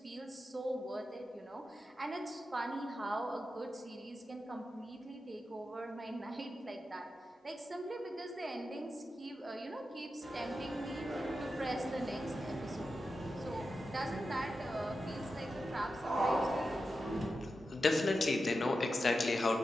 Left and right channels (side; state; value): both; normal; correlation 0.90